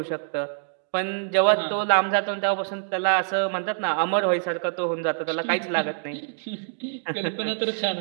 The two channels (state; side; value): silent; left; digital silence